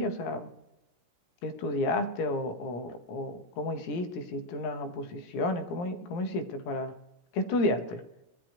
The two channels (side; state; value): right; late; 17 ms